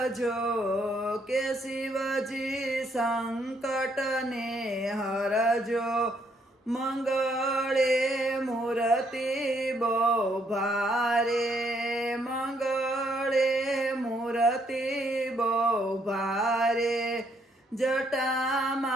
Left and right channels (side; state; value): both; normal; correlation 0.71